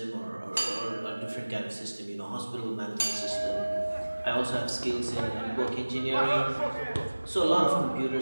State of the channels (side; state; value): both; inverted; correlation -1.00